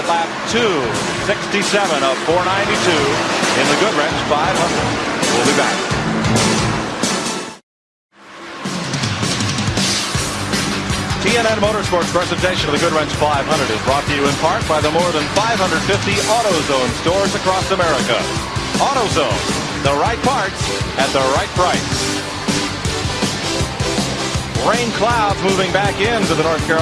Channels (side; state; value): both; identical; correlation 1.00